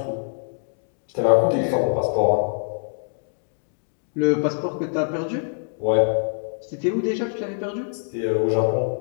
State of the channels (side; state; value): right; silent; digital silence